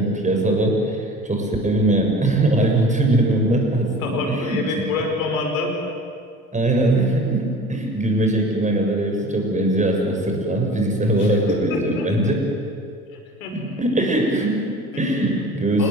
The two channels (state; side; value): normal; both; correlation 0.41